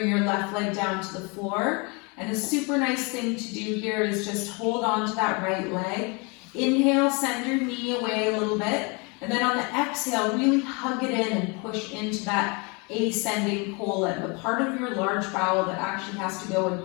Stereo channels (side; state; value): right; quieter; 30.7 dB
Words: your left leg down to the floor. And a super nice thing to do here is just hold on to that right leg. Inhale, send your knee away a little bit. And then on the exhale, really hug it in and push into that ascending colon, the part of your large bowel that actually has to go